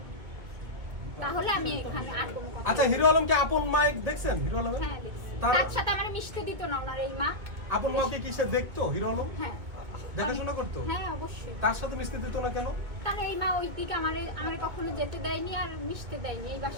তাহলে আমি এখানে আর কোনো কথা। আচ্ছা, হিরো আলমকে আপন মাইক দেখছেন? হিরো আলম হ্যাঁ, দেখছি। তার সাথে আমার মিশতে দিত না ওনার এই মা। আপন মাকে কি সে দেখতো? হিরো আলম হ্যাঁ, দেখাশোনা করতো? হ্যাঁ অবশ্যই। তার সাথে মিশতে দিত না কেন? তার এই মা ওই দিকে আমারে কখনো যেতে দেয়নি আর মিশতে দেয়নি, এই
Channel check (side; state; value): left; late; 2.5 ms